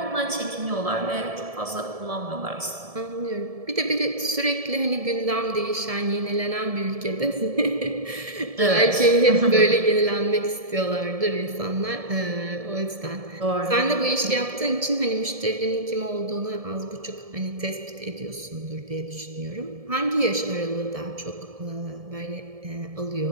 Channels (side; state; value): left; late; 1.7 ms